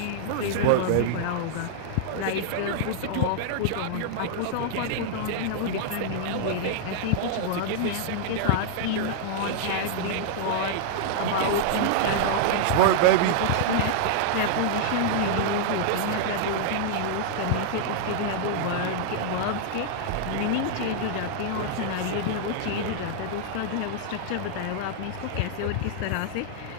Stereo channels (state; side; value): different; both; correlation -0.01